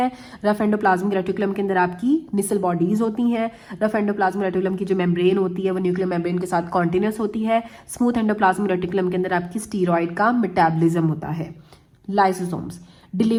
रफ एंडोप्लाज्मिक रेटिकुलम के अंदर आपकी निसल बॉडीज होती हैं। रफ एंडोप्लाज्मिक रेटिकुलम की जो मेम्ब्रेन होती है वो न्यूक्लियर मेम्ब्रेन के साथ कॉन्टिन्यूस होती है। स्मूथ एंडोप्लाज्मिक रेटिकुलम के अंदर आपकी स्टीरॉयड का मेटाबॉलिज्म होता है। लाइसोसोम्स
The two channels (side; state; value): both; identical; correlation 1.00